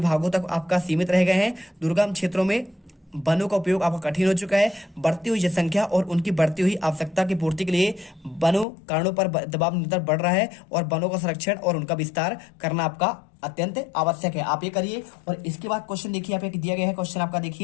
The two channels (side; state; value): right; drops out; at 8.7 s